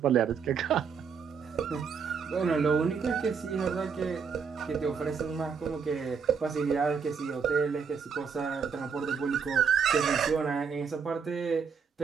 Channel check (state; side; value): quieter; left; 6.1 dB